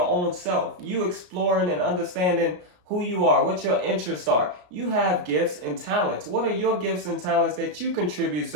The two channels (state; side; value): late; left; 34 ms